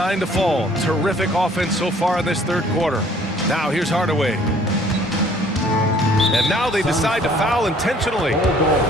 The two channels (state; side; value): normal; both; correlation 0.57